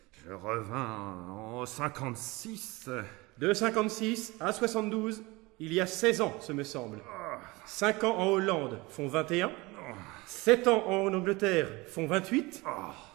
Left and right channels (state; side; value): quieter; left; 23.0 dB